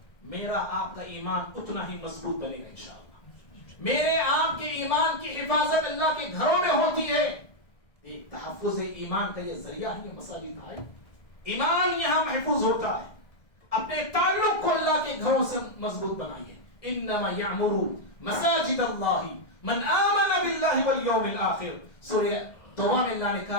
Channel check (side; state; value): right; late; 1.7 ms